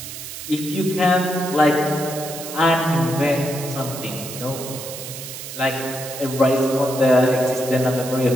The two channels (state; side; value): noise; right; hiss, 10 dB below the sound